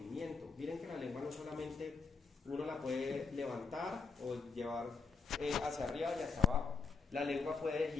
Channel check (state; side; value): quieter; right; 5.1 dB